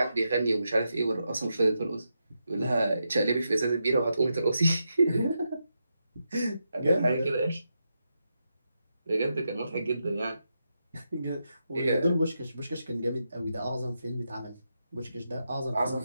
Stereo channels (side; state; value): both; inverted; correlation -0.86